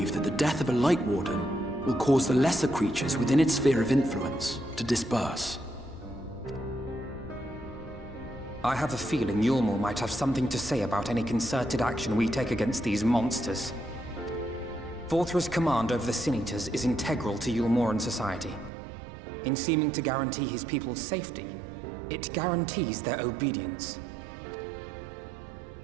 that the death of a Light Warden will cause the lesser creatures within its sphere of influence to disperse. I have a feeling Yulmor might have something to say about any concerted action we take against these monsters. Vorthra's command over the Sin Eaters is integral to Yulmoran society. In seeming to guarantee his people's safety, it guarantees their obedience.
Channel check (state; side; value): drops out; left; at 18.7 s